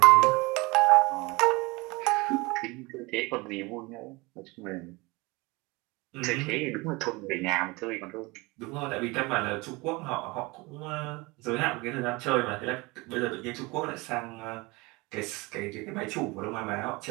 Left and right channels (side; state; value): left; quieter; 24.4 dB